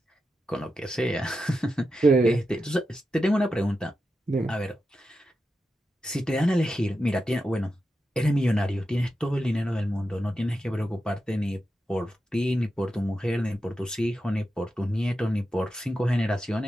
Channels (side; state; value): both; normal; correlation 0.89